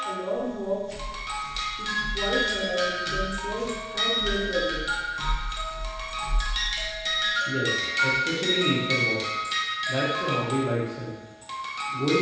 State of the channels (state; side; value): identical; both; correlation 1.00